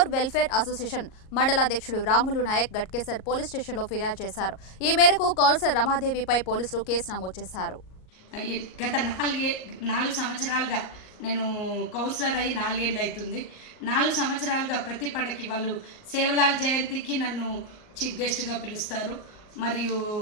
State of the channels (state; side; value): late; right; 38 ms